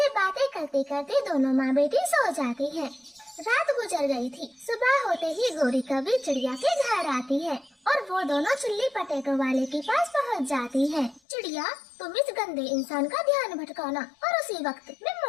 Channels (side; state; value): right; drops out; at 11.2 s